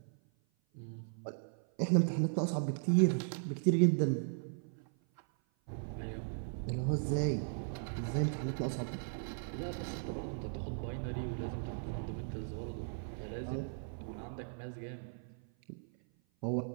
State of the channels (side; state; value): left; silent; 53 dB below the other